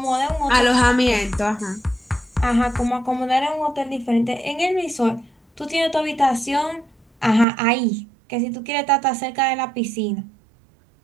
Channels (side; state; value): left; drops out; at 7.5 s